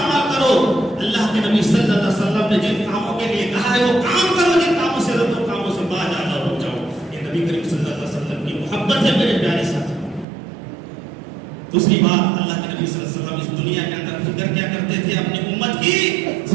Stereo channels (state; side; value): drops out; left; at 10.2 s